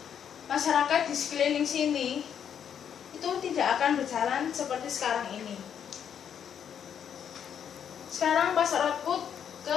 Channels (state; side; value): quieter; right; 8.4 dB